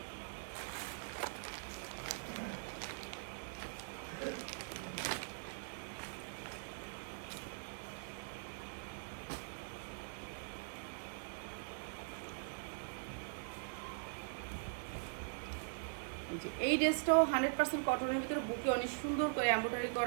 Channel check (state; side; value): silent; left; digital silence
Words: এই ড্রেসটাও 100% কটনের ভিতরে, বুকে অনেক সুন্দর করে এমব্রয়ডারি